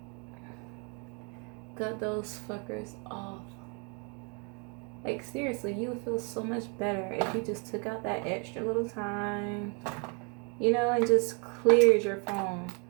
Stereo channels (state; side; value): quieter; left; 34.6 dB